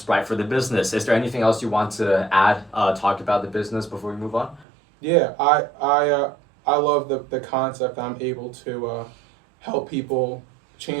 for the business. Is there anything else you want to add, talk about the business before we move on? Yeah, I love the concept. I'm able to help people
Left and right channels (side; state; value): left; drops out; at 4.7 s